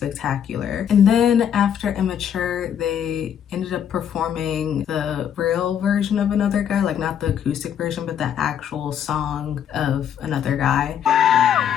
And then after Immature, they ended up performing the real version of Another Guy, like not the acoustic version, but the actual song of Another Guy.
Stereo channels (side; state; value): right; quieter; 8.9 dB